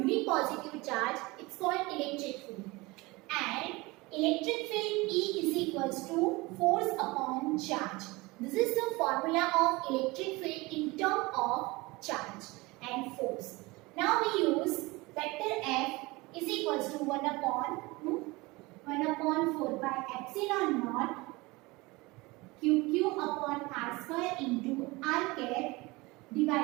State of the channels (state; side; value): quieter; left; 23.0 dB